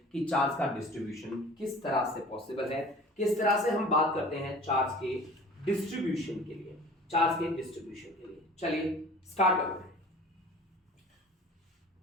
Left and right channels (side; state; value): both; normal; correlation 0.44